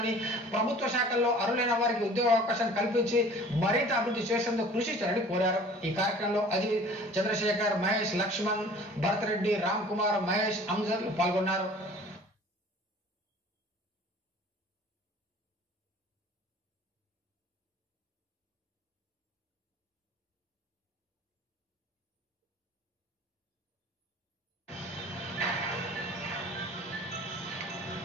ప్రభుత్వ శాఖల్లో అర్హులైన వారికి ఉద్యోగ అవకాశం కల్పించి మరింత అభివృద్ధి చేసేందుకు కృషి చేయాలని కోరారు. ఈ కార్యక్రమంలో అజిత్, చంద్రశేఖర్, మహేష్, లక్ష్మణ్, భరత్ రెడ్డి, రామ్ కుమార్, మహేష్, అంజద్ పాల్గొన్నారు.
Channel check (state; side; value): normal; both; correlation 0.47